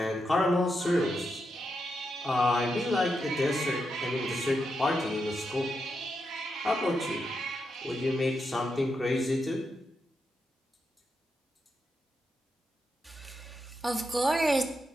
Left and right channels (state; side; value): normal; both; correlation 0.85